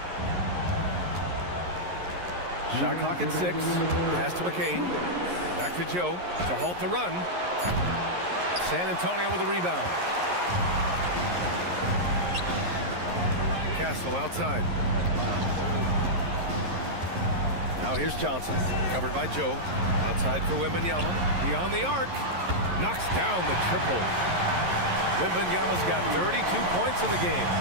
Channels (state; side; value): late; left; 11 ms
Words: Shot clock at 6. Pass to McCain. Back to Joe to halt the run. San Antonio with a rebound. Castle outside. Now here's Johnson. Covered by Joe. Outside for Wembanayama. Beyond the arc. Knocks down the triple. Wembanayama's got 32 points in the game.